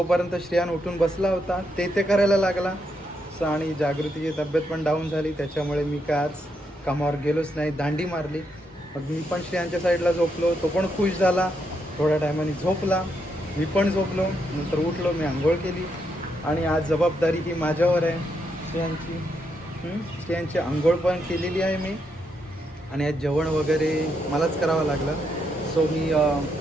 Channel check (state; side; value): normal; both; correlation 0.79